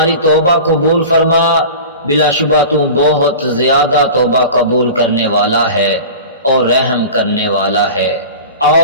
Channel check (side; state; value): both; inverted; correlation -0.35